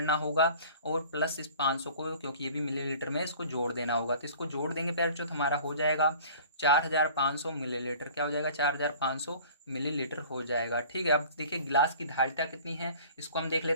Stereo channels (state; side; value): inverted; both; correlation -0.46